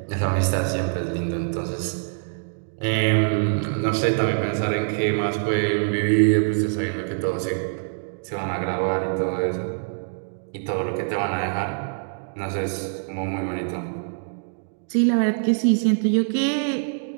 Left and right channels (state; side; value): silent; left; digital silence